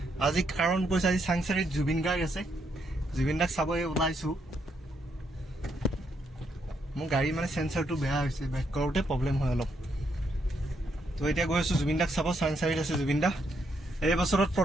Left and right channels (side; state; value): both; normal; correlation 0.76